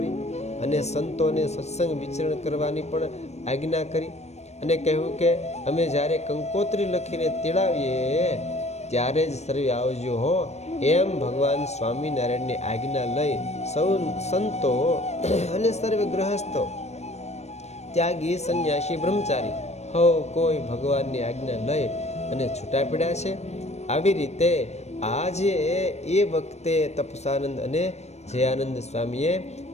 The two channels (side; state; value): right; late; 0.32 ms